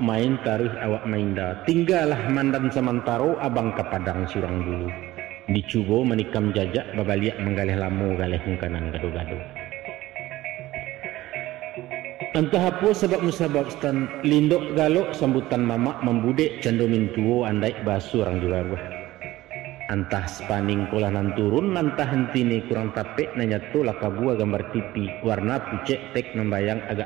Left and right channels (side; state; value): left; quieter; 16.7 dB